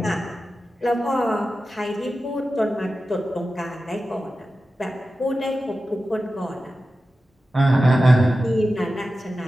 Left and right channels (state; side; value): normal; both; correlation 0.93